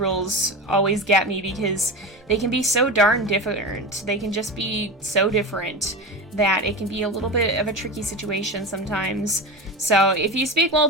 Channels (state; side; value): normal; both; correlation 0.25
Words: always get me because they can be so darn different. They can just be so different that it can be a little bit of a tricky situation sometimes. So if you speak